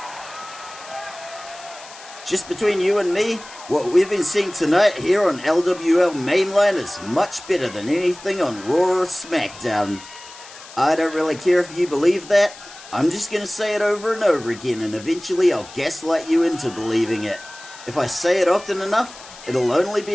Just between you and me, what we've been seeing tonight here on LWL Mainline is much better than anything on Raw or SmackDown. I don't really care if you believe that, I'm just gonna say it over and over again and eventually I'll gaslight you into believing it. If I say it often enough, it'll only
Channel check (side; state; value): left; noise; hiss, 18 dB below the sound